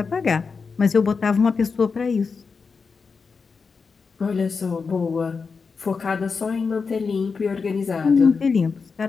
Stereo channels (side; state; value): right; quieter; 5.0 dB